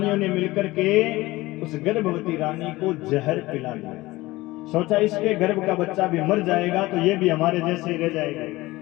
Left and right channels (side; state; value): right; quieter; 19.5 dB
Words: ने मिलकर के उस गर्भवती रानी को जहर पिला दिया। सोचा इसके गर्भ का बच्चा भी मर जाएगा तो ये भी हमारे जैसे रह